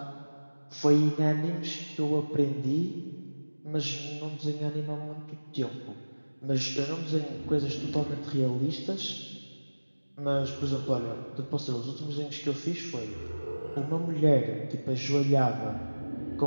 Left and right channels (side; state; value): both; inverted; correlation -1.00